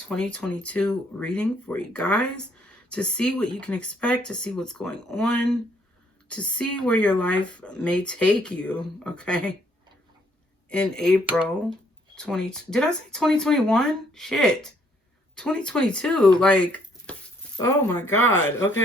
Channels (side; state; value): both; normal; correlation 0.67